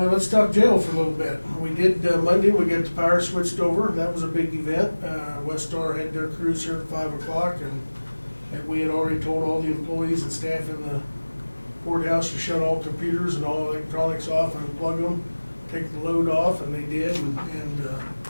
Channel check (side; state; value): both; inverted; correlation -1.00